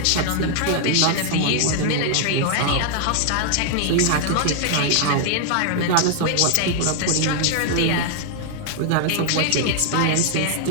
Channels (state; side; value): different; both; correlation 0.00